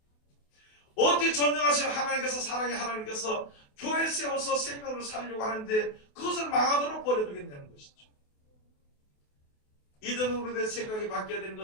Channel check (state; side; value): late; right; 28 ms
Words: 어찌 전능하신 하나님께서, 사랑의 하나님께서 교회 세워서 생명을 살려고 하는데 그것을 망하도록 버려두겠냐는 것이죠. 이든 우리의 생각이 바뀌어야 되는